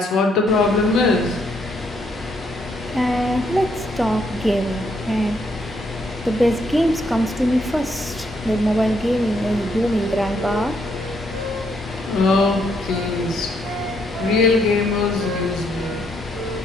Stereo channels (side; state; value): both; normal; correlation 0.73